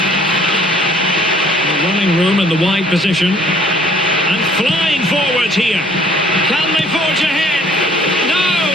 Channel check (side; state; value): both; normal; correlation 0.58